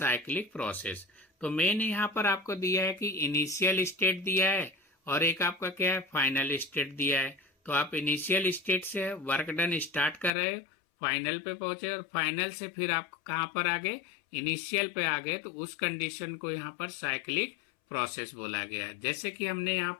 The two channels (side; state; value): right; drops out; at 10.3 s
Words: process. तो मेन यहाँ पर आपको दिया है कि इनिशियल स्टेट दिया है और एक आपका क्या है, फाइनल स्टेट दिया है। तो आप इनिशियल स्टेट से वर्क डन स्टार्ट कर रहे हो, फाइनल पे पहुंचे और फाइनल से फिर आप कहाँ पर आ गए, इनिशियल पे आ गए। तो उस कंडीशन को यहाँ पर साइक्लिक प्रोसेस बोला गया है। जैसे कि हमने यहाँ